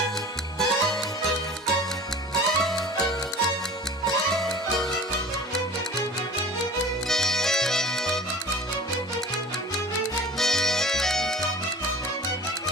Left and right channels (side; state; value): both; normal; correlation 0.42